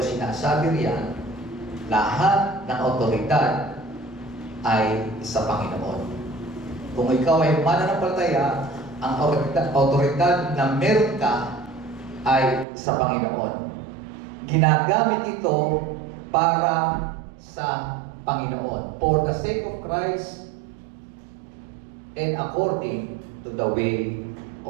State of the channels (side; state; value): left; drops out; at 12.7 s